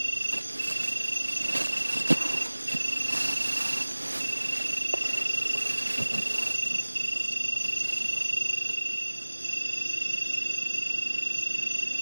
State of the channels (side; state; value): both; inverted; correlation -1.00